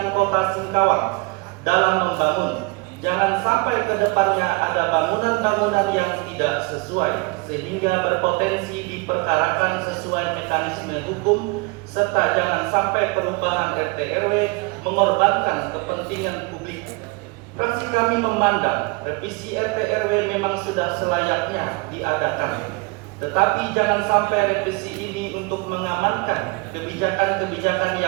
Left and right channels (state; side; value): quieter; left; 26.9 dB